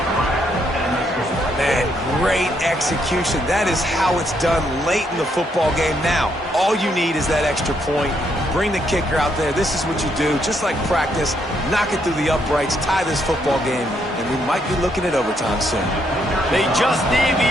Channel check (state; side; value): normal; both; correlation 0.74